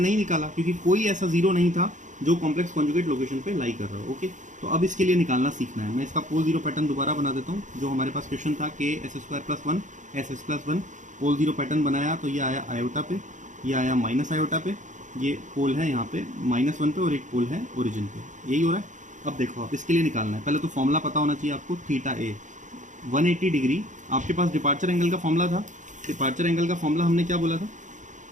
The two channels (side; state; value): left; late; 0.36 ms